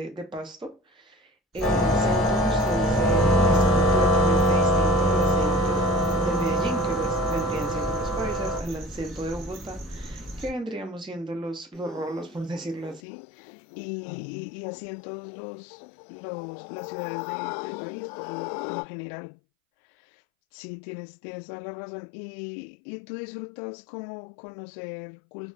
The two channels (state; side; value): drops out; right; at 13.0 s